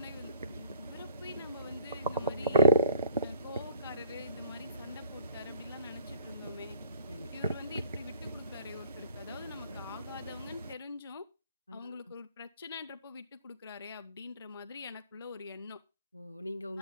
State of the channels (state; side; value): inverted; both; correlation -0.54